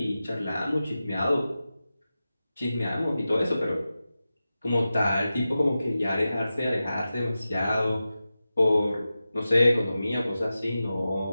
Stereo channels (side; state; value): both; inverted; correlation -0.94